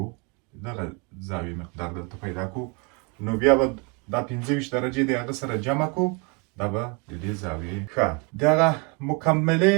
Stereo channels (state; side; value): quieter; left; 31.9 dB